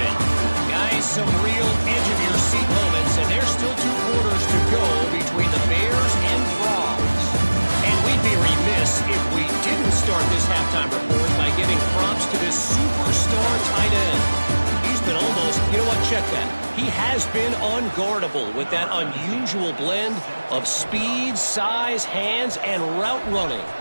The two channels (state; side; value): inverted; both; correlation -1.00